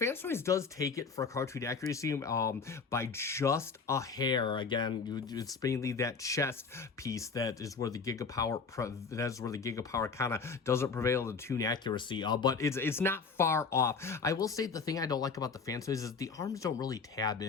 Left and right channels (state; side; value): quieter; right; 5.1 dB